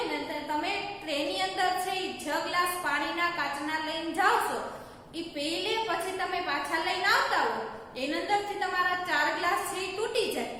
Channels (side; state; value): both; identical; correlation 1.00